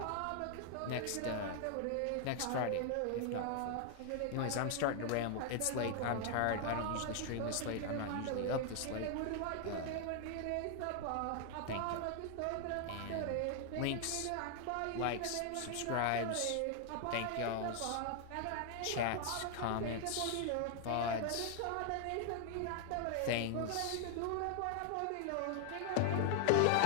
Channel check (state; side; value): different; both; correlation 0.00